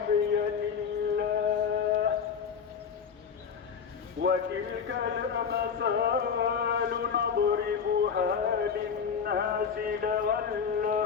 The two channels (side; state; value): right; quieter; 6.6 dB